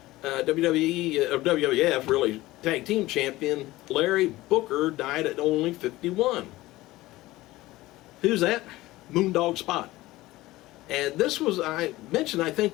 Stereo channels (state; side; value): quieter; right; 18.0 dB